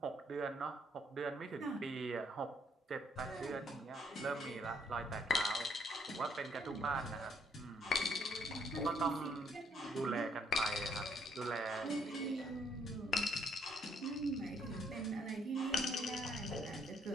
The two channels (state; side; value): normal; both; correlation 0.69